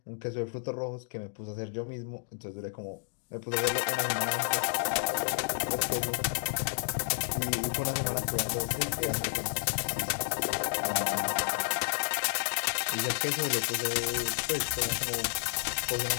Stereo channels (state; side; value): silent; right; digital silence